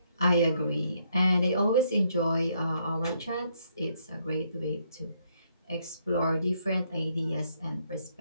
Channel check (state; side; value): inverted; both; correlation -0.73